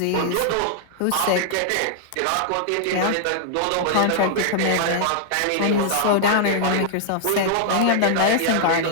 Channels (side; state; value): both; different; correlation -0.01